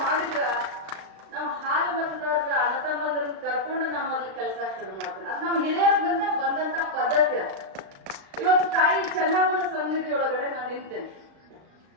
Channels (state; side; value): late; left; 36 ms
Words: ಮಾಡಿದ್ರ ನಾವು ಹಾಲು ಮತದಾರರ ಅಣ್ಣತಮ್ಮರನ್ನ ಕರ್ಕೊಂಡು ನಾವು ಮೊದ್ಲು ಕೆಲಸ ಶುರು ಮಾಡ್ತೇನೆ. ಅದು ನಮ್ಮ ಹಿರಿಯರ ಬಂದಂತ ಪದ್ಧತಿ ಅದು. ಇವತ್ತು ತಾಯಿ ಚೆನ್ನಮ್ಮನ ಸನ್ನಿಧಿ ಒಳಗಡೆ ನಾನು ನಿಂತೇನೆ.